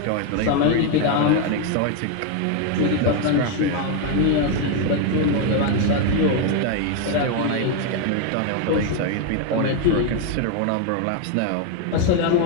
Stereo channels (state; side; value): different; both; correlation 0.01